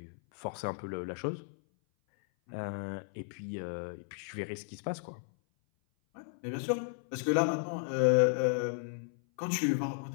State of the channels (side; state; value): right; silent; 55 dB below the other